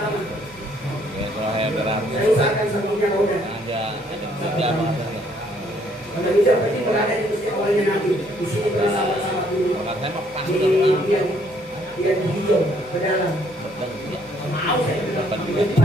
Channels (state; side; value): normal; both; correlation 0.66